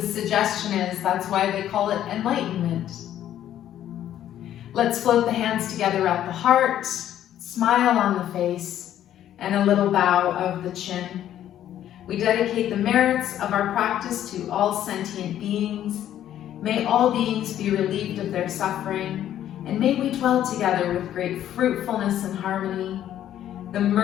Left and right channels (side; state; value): right; quieter; 11.4 dB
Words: suggestion is, that's why they call it enlightenment. Let's float the hands together at the heart, smile on the face, and a little bow of the chin. We dedicate the merits of our practice to all sentient beings. May all beings be relieved of their suffering, and may we dwell together with great fruitfulness and harmony. The